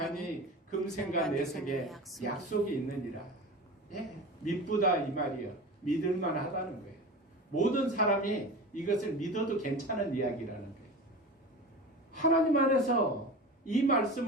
금생과 내색에 약속이 있느니라. 예, 믿부다 이 말이요. 믿을만 하다는 거예요. 모든 사람이 이것을 믿어도 괜찮은 이야기라는 거예요. 하나님 안에서 이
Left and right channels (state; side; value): normal; both; correlation 0.31